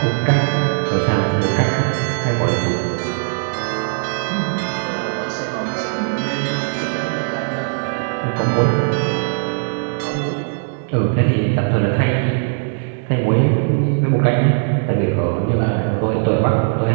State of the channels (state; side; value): silent; left; 67 dB below the other